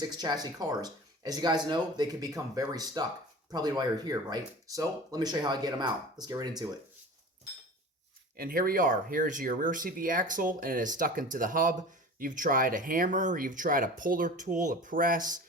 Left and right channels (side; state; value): both; normal; correlation 0.37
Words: chassis cars. As you guys know, they can become very stuck. Probably why you're here, right? So let me show you how I get them out. Let's get right into it. And here we are. Here's your rear CV axle and it is stuck into the hub. You've tried a hammer, you've tried a puller tool, a press,